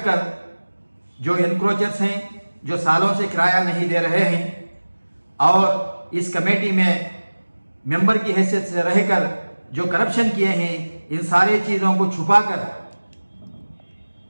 कर जो एनक्रोचर्स हैं, जो सालों से किराया नहीं दे रहे हैं और इस कमेटी में मेंबर की हैसियत से रहकर जो करप्शन किए हैं, इन सारी चीज़ों को छुपाकर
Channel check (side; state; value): both; inverted; correlation -1.00